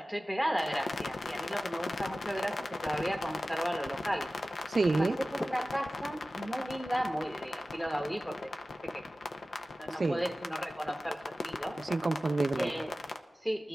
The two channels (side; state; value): both; normal; correlation 0.95